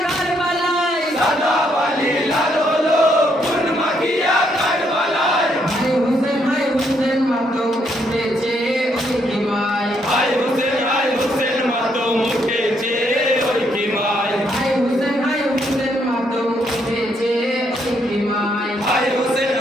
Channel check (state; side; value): normal; both; correlation 0.74